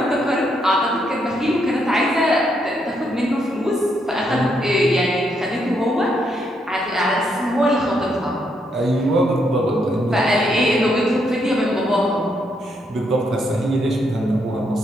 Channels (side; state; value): both; normal; correlation 0.76